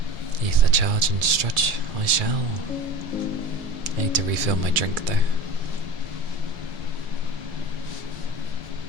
Ether charge and stretch, I shall. I need to refill my drink though.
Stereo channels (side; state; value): left; late; 1.7 ms